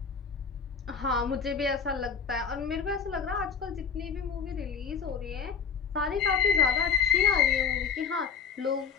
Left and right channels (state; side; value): quieter; right; 6.4 dB